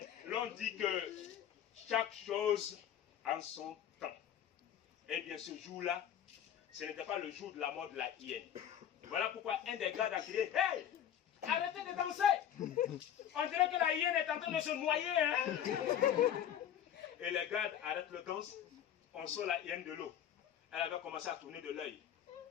l'on dit que chaque chose en son temps. Eh bien, ce jour-là, ce n'était pas le jour de la mort de la hyène. Voilà pourquoi un des gardes a crié, hey, arrêtez de danser. On dirait que la hyène est en train de se noyer. Hein? Et les gardes arrêtent le danse. On sort la hyène de l'eau. Elle avait commencé à tourner de l'œil.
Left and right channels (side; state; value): right; quieter; 9.9 dB